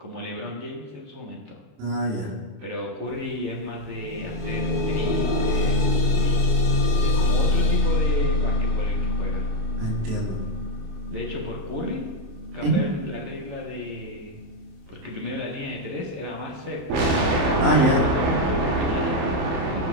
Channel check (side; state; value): left; late; 27 ms